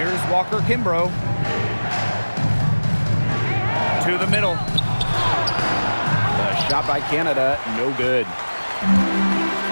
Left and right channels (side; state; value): both; inverted; correlation -1.00